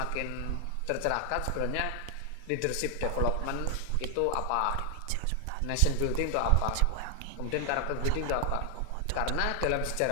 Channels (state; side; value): different; both; correlation 0.00